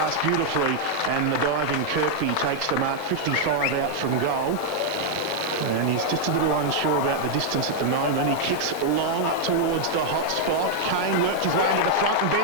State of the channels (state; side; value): normal; both; correlation -0.01